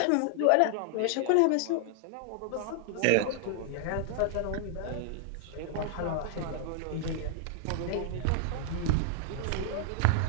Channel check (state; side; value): different; both; correlation 0.00